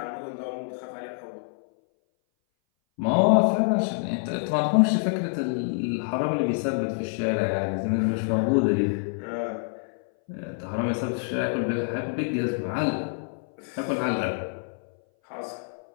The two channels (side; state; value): right; silent; 59 dB below the other